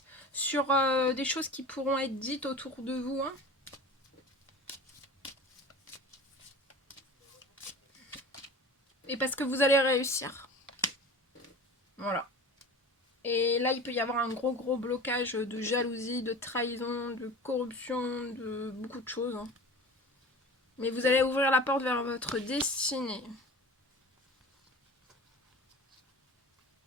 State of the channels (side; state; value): both; normal; correlation 0.37